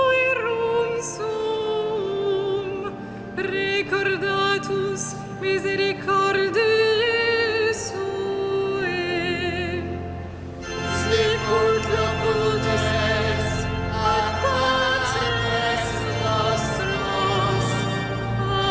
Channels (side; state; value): both; identical; correlation 1.00